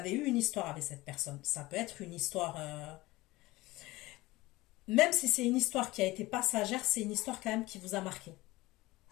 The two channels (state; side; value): quieter; right; 19.7 dB